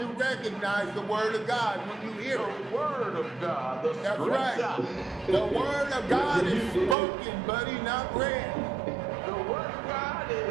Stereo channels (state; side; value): drops out; left; at 7.0 s